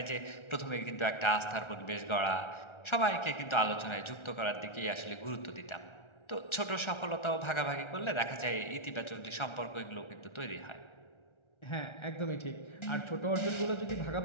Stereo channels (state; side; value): late; right; 1.3 ms